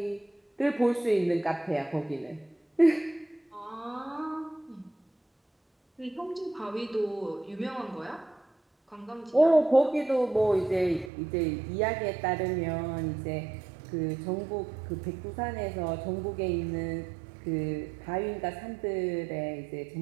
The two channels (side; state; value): left; drops out; at 11.1 s